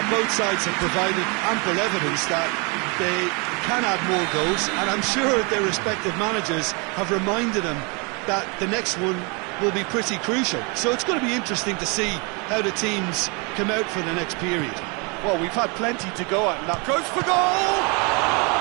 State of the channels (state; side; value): quieter; left; 31.4 dB